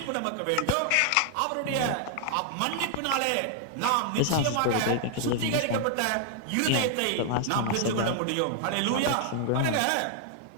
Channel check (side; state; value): both; different; correlation 0.00